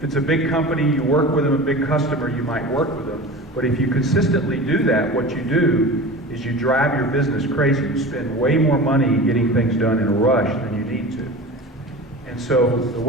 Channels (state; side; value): normal; both; correlation 0.33